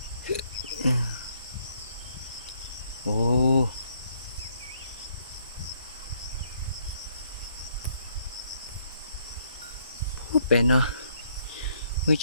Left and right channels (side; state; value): both; inverted; correlation -0.70